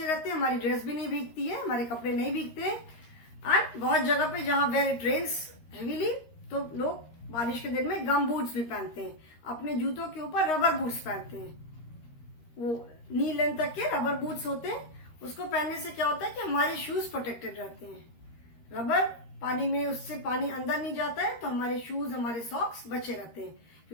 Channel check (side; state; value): right; late; 13 ms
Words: रहते हैं, हमारी ड्रेस भी नहीं भीगती है, हमारे कपड़े नहीं भीगते। एंड बहुत जगह पे जहां वेयर इट रेन्स हेवीली, तो लोग बारिश के दिन में गम बूट्स भी पहनते हैं, अपने जूतों के ऊपर रबर बूट्स पहनते हैं। वो नी लेंथ तक के रबर बूट्स होते हैं, उसको पहनने से क्या होता है कि हमारे शूज प्रोटेक्टेड रहते हैं। रबर पानी में, उससे पानी अंदर नहीं जाता है, तो हमारे शूज, हमारे सॉक्स बचे रहते हैं।